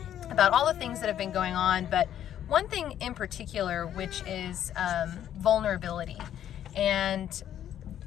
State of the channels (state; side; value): quieter; right; 10.7 dB